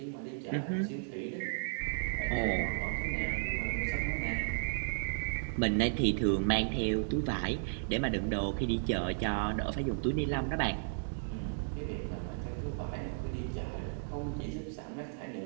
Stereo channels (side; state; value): left; silent; digital silence